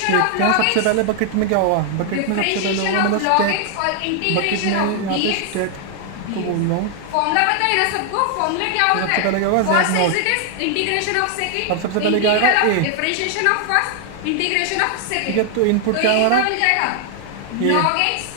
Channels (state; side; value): different; both; correlation 0.00